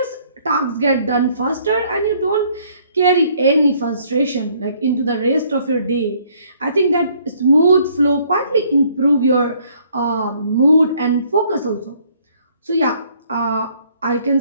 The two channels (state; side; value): inverted; both; correlation -0.63